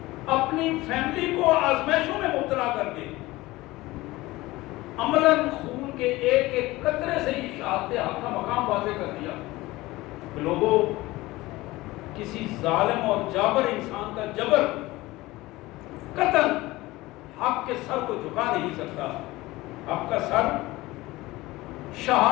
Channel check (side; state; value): right; quieter; 19.4 dB